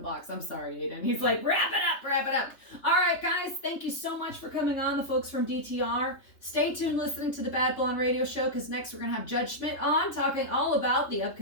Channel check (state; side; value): late; right; 3.3 ms